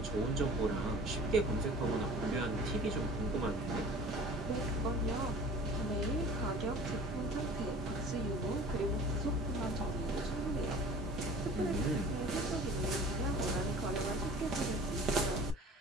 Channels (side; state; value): both; normal; correlation 0.44